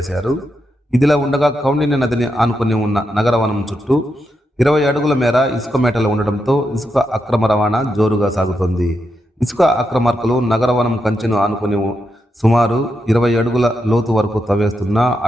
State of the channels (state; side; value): normal; both; correlation 0.84